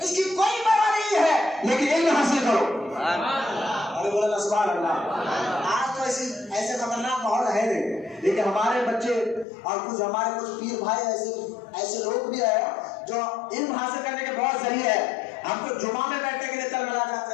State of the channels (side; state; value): right; drops out; at 9.5 s